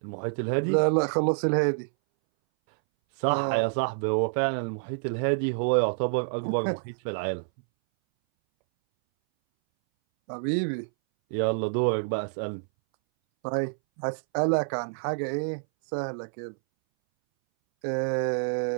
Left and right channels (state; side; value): silent; left; 60 dB below the other